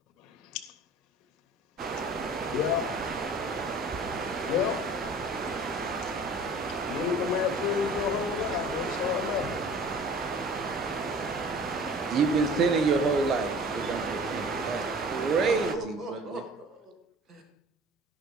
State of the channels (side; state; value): both; normal; correlation 0.45